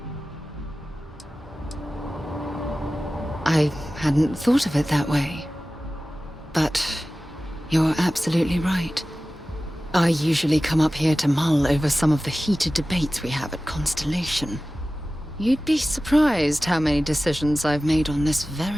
I hadn't thought of it that way. But you're absolutely right. I usually come up here to mull over some of the heated debates we have at Constellation. You'd be surprised how many decisions I've made on this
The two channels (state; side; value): normal; both; correlation 0.96